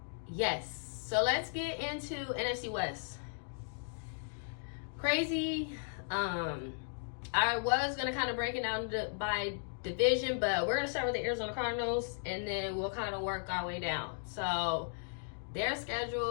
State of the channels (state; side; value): silent; right; digital silence